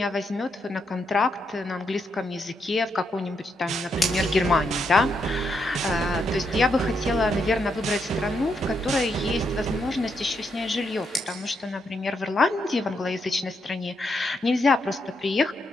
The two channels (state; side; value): normal; both; correlation 0.79